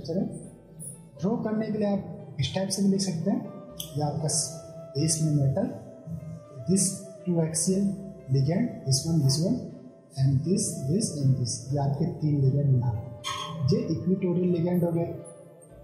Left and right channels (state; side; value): identical; both; correlation 1.00